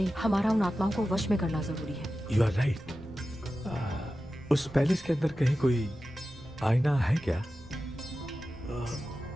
हमारा उन आत्माओं को वश में करना जरूरी है। You are right. उस पैलेस के अंदर कहीं कोई आईना है क्या?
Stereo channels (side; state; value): both; normal; correlation 0.93